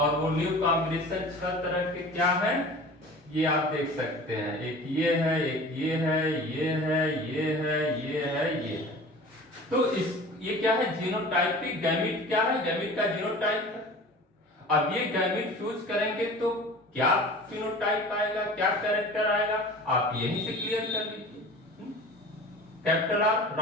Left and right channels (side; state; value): both; normal; correlation 0.40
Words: वो न्यू कॉम्बिनेशन 6 तरह के क्या हैं? ये आप देख सकते हैं. एक ये है, एक ये है, ये है, ये है, ये है, ये है. तो इस ये क्या है? Genotypic gamete. क्या है? गैमीट का जीनोटाइप है. अब ये गैमीट फ्यूज करेंगे तो क्या फिनोटाइप आएगा, क्या कैरेक्टर आएगा, आप यहीं से क्लियर कर लीजिए. कैपिटल आर